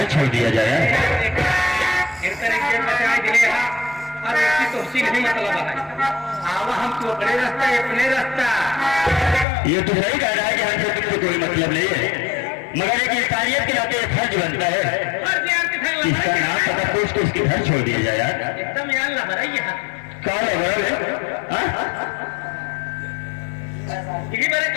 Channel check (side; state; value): right; drops out; at 9.5 s